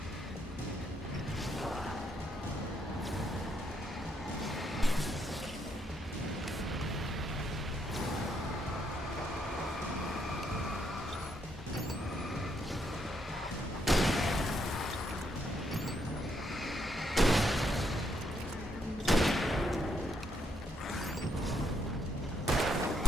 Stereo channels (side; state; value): both; normal; correlation 0.76